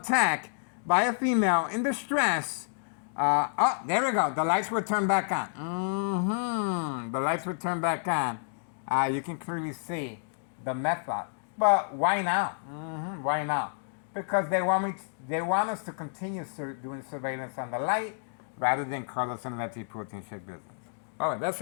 by a female in distress. Oh, there we go. The lights were turned back on. The lights were turned back on. You can clearly see the method. But why now? Why now? Because they want us to continue doing surveillance on the light rather than Carlos and Letty protein shake business. All right, that's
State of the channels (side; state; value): right; silent; digital silence